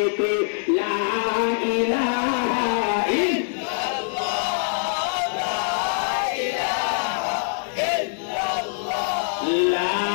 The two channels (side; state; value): right; silent; digital silence